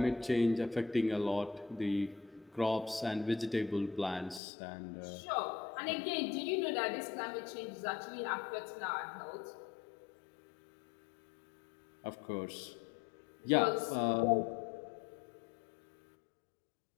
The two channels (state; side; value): drops out; right; at 4.4 s